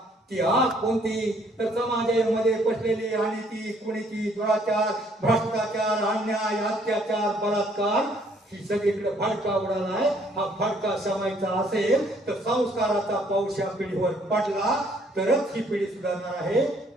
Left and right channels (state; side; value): normal; both; correlation 0.64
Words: ती आग कोणती? तर समाजामध्ये पसलेली आणि ती कुणीची दुराचार, भ्रष्टाचार, अन्याय, अत्याचार, बलात्कार, ही सगळीकडे भडका उडालाय. हा भडका शमायचा असेल तर संस्काराचा पाऊस या पिढीवर पडला तरच ही पिढी सुधारणार आहे.